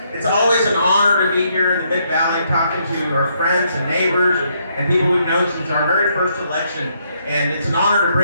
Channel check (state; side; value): inverted; both; correlation -0.74